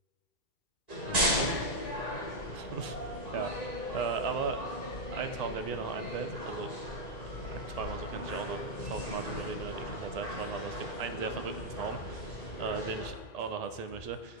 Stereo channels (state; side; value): late; right; 1.9 ms